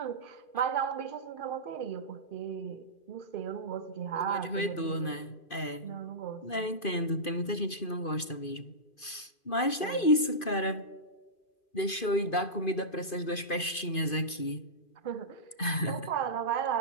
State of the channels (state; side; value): late; right; 2.5 ms